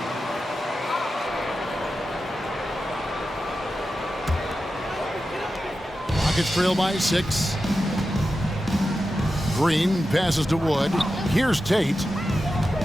Rockets trail by 6. Green passes to Wood. Here's Tate.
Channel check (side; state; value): both; normal; correlation 0.91